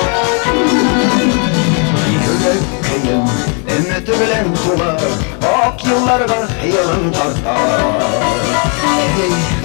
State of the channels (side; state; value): right; quieter; 38.0 dB